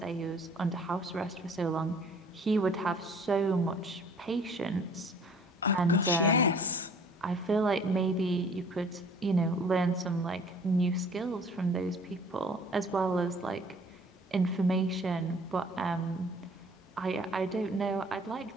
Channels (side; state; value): both; normal; correlation 0.53